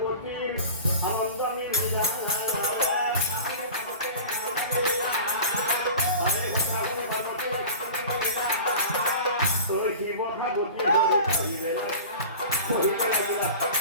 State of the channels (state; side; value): inverted; both; correlation -0.36